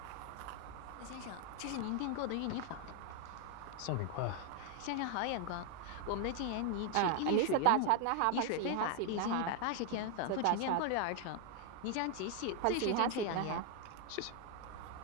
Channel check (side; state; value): both; different; correlation 0.01